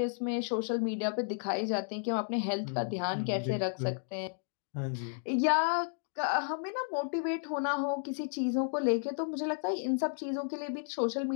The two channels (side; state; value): right; silent; digital silence